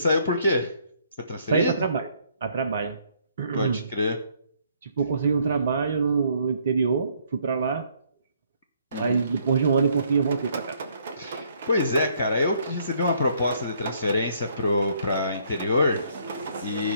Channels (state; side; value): inverted; both; correlation -0.67